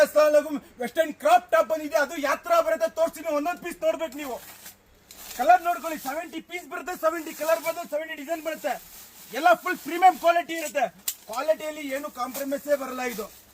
ಅಸ್ಸಲಾಮು western crop top ಬಂದಿದೆ. ಅದು ಯಾತ್ರಾ ಬರುತ್ತೆ, ತೋರಿಸ್ತೀನಿ. ಒಂದೊಂದು ಪೀಸ್ ನೋಡ್ಬೇಕು ನೀವು. ಕಲರ್ ನೋಡ್ಕೊಳ್ಳಿ. 70 ಪೀಸ್ ಬರುತ್ತೆ, 70 ಕಲರ್ ಬರುತ್ತೆ, 70 ಡಿಸೈನ್ ಬರುತ್ತೆ. ಎಲ್ಲ ಫುಲ್ ಪ್ರೀಮಿಯಂ ಕ್ವಾಲಿಟಿ ಇರುತ್ತೆ. ಕ್ವಾಲಿಟಿಯಲ್ಲಿ ಏನು ಕಾಂಪ್ರಮೈಸೇ ಬರಲ್ಲ. ಇದು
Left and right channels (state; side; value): identical; both; correlation 1.00